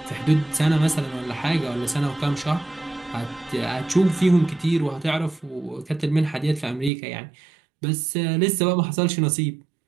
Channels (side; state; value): left; drops out; at 6.9 s